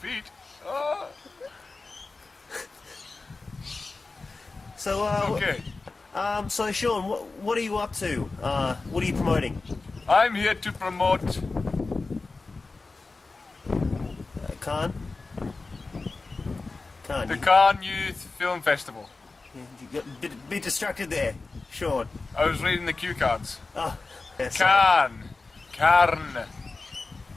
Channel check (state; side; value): quieter; right; 3.7 dB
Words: Oh, So, okay. so Sean, what are you up to? What are you promoting? I'm here to promote... Khan? Khan, the Cannes Youth Film Festival. you got a bit distracted there, Sean. I was reading the cue cards. Oh, yeah, sorry. Carn.